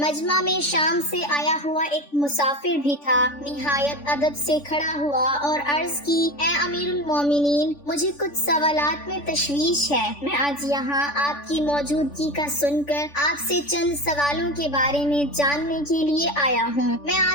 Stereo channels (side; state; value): right; late; 3.5 ms